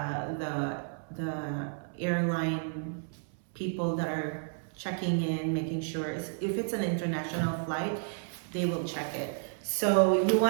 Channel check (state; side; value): silent; left; 57 dB below the other